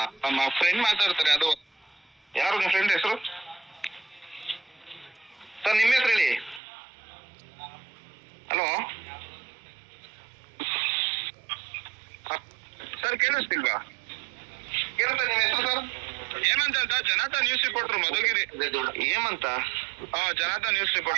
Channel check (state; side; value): drops out; left; at 6.6 s